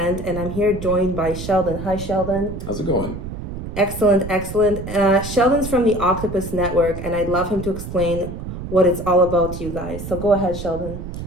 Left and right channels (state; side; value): noise; right; rumble, 8 dB below the sound